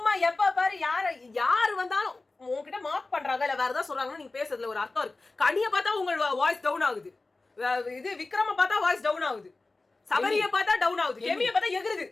எப்ப பாரு யாரு வந்தாலும் உங்ககிட்ட மார்க் பண்றாங்க இல்ல வேற ஏதாவது சொல்றாங்கன்னா நீங்க பேசுறதுல ஒரு அர்த்தம் இருக்கு. கனியை பார்த்தா உங்க வாய்ஸ் டவுன் ஆகுது, இது விக்ரம பார்த்தா வாய்ஸ் டவுன் ஆகுது, சபரியை பார்த்தா டவுன் ஆகுது, கெமியை பார்த்தா எகுறுது.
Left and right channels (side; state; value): right; quieter; 3.4 dB